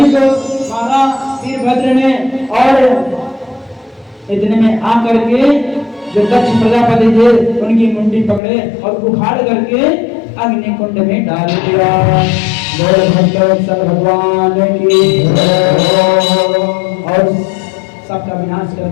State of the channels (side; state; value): right; drops out; at 8.4 s